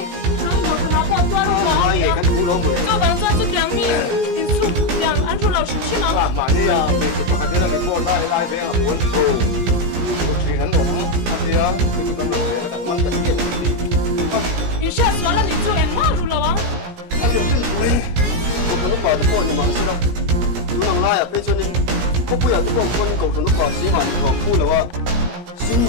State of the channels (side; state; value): left; late; 17 ms